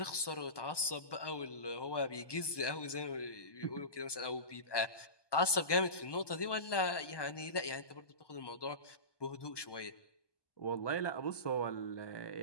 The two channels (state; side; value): late; right; 1.2 ms